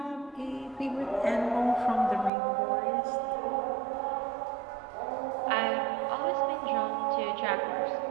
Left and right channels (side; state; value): left; drops out; at 2.3 s